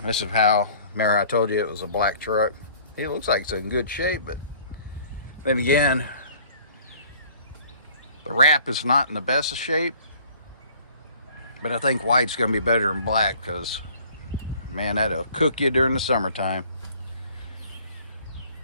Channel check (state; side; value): inverted; both; correlation -0.53